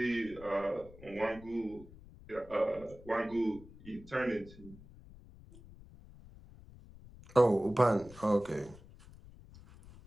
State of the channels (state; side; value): noise; left; rumble, 20 dB below the sound